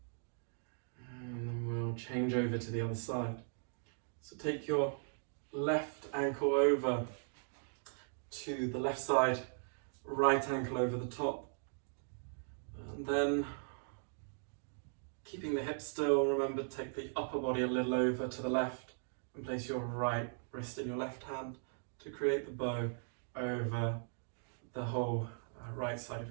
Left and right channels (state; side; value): silent; left; digital silence